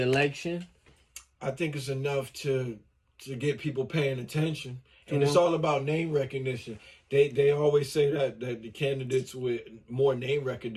I think it's enough to get people paying attention, and To it's him? all about name recognition. They always say that the candidates with more name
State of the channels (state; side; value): identical; both; correlation 1.00